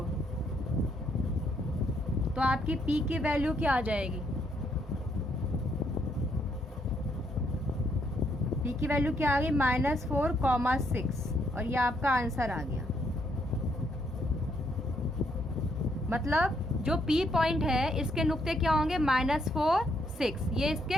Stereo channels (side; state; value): both; normal; correlation 0.73